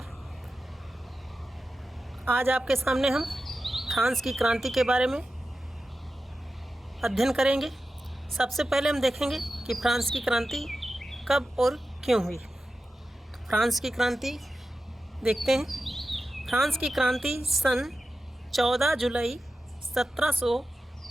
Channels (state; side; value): normal; both; correlation 0.93